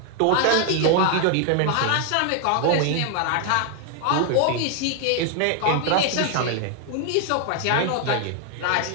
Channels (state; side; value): different; both; correlation 0.00